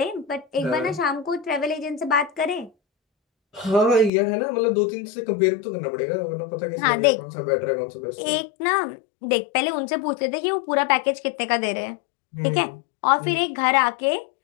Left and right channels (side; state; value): right; drops out; at 4.1 s